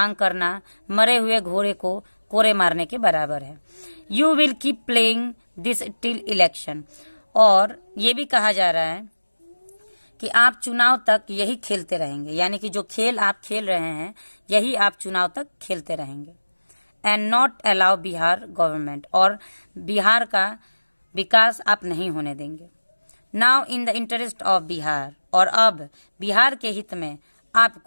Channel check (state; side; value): inverted; both; correlation -1.00